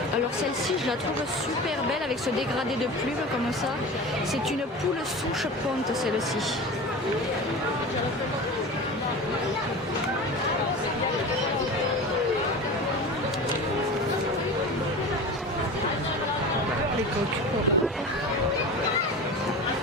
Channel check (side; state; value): both; normal; correlation 0.32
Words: Alors celle-ci, je la trouve super belle avec ce dégradé de plumes comme ça. C'est une poule souche ponte celle-ci. Les coques.